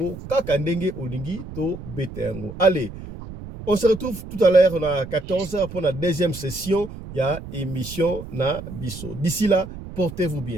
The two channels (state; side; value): noise; right; rumble, 12 dB below the sound